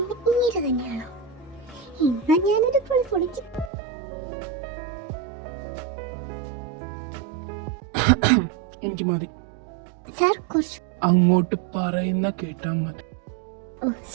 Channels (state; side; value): drops out; left; at 3.7 s